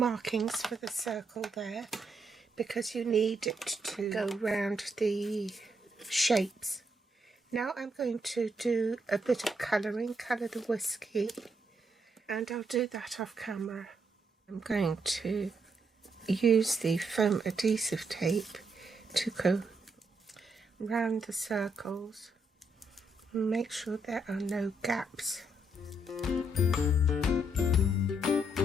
for the circle there because you need it to go round the shapes. Now I'm going to do a bit of colouring, colour the whiskey, and I'll do that off camera. I'm going to use the foam adhesive tape to go round the circles and make sure there are no gaps.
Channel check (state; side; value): normal; both; correlation 0.77